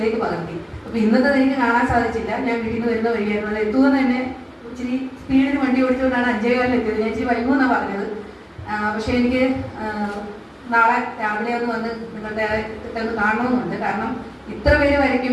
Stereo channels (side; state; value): both; identical; correlation 1.00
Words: പകർത്തി. അപ്പൊ ഇന്നത്തെ എനിക്ക് കാണാൻ സാധിച്ചില്ല. ഞാൻ വീട്ടിൽ നിന്ന് വരുന്ന വഴിയായിരുന്നു. അത് എത്തുമെന്ന് തന്നെ ഇച്ചിരി സ്പീഡിന് വണ്ടി ഓടിച്ചുകൊണ്ടാണ് 5:15 എത്തിയത്. ഞാൻ ഇച്ചിരി വൈകുമെന്നാണ് പറഞ്ഞത്. പക്ഷെ എനിക്ക് നാളെ രാവിലെ ഒന്ന് വന്ന് നിങ്ങളുടെ ഒന്ന് കാണണമെന്നുണ്ട്. കാരണം ഇത്ര പേര്